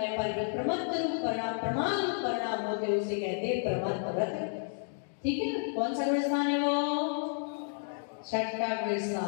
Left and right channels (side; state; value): right; silent; digital silence